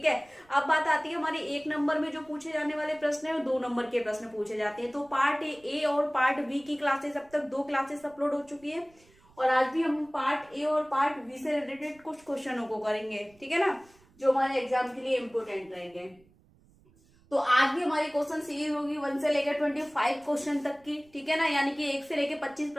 है। अब बात आती है हमारे 1 नंबर में जो पूछे जाने वाले प्रश्न है, 2 नंबर के प्रश्न पूछे जाते हैं। तो पार्ट ए और पार्ट बी की क्लासेस, अब तक 2 क्लासेस अपलोड हो चुकी है और आज भी हम पार्ट ए और पार्ट बी से रिलेटेड कुछ क्वेश्चनों को करेंगे, ठीक है ना, जो हमारे एग्जाम के लिए इंपोर्टेंट रहेंगे। तो आज भी हमारी क्वेश्चन सीरीज होगी 1 से लेकर 25 क्वेश्चन तक की, ठीक है ना, यानी कि 1 से लेकर 25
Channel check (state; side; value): noise; right; rumble, 30 dB below the sound